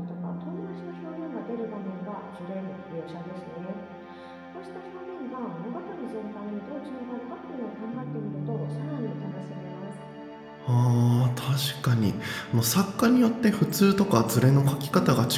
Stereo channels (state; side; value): identical; both; correlation 1.00